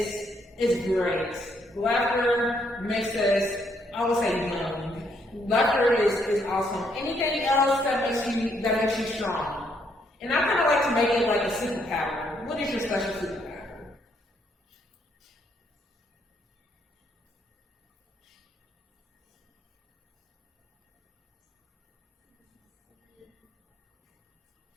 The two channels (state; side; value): normal; both; correlation 0.72